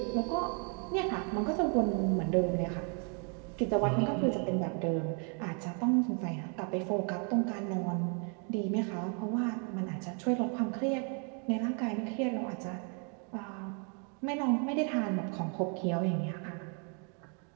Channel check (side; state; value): left; quieter; 39.3 dB